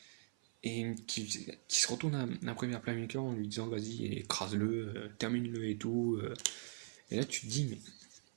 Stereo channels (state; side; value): silent; left; 50 dB below the other